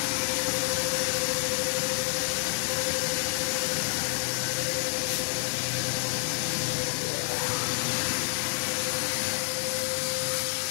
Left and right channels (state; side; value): silent; right; digital silence